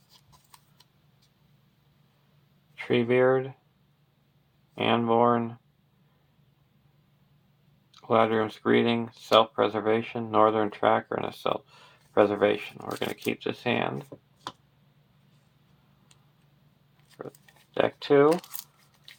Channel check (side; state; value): both; identical; correlation 1.00